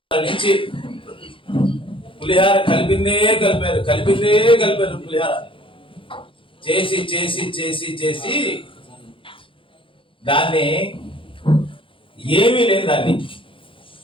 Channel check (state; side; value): late; right; 0.25 ms